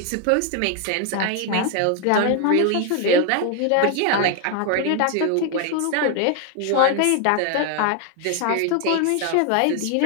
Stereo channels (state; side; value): different; both; correlation 0.01